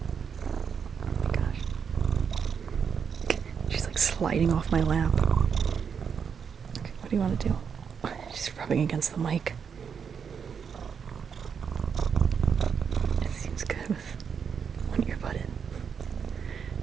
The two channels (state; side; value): quieter; left; 6.8 dB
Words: Oh my gosh. She's like sliding off my lap. Okay, what do you want to do? She's rubbing against the mic.